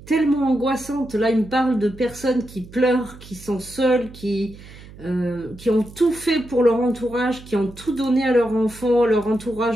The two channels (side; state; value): right; noise; hum, 19 dB below the sound